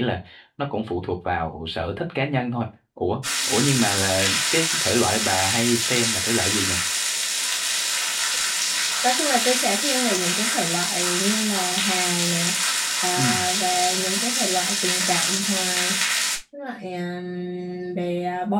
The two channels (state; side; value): identical; both; correlation 1.00